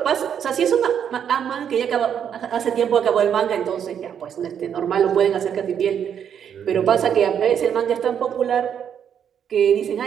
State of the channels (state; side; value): quieter; left; 8.5 dB